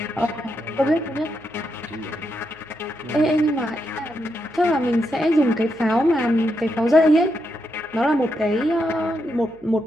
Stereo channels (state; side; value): noise; left; hum, 30 dB below the sound